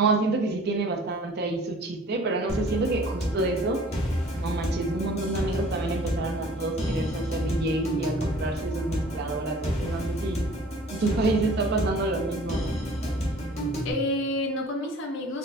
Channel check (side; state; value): both; normal; correlation 0.49